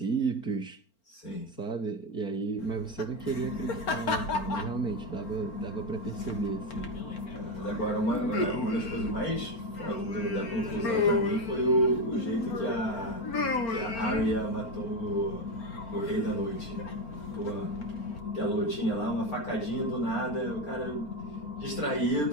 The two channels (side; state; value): right; late; 4.4 ms